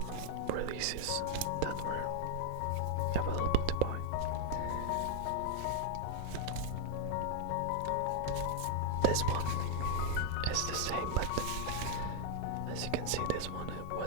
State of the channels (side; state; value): both; different; correlation 0.00